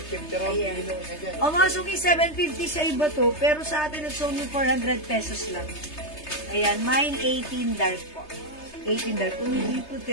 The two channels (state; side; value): late; right; 3.3 ms